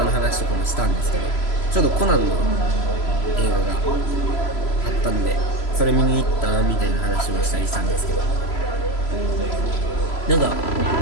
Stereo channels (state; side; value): late; right; 3.0 ms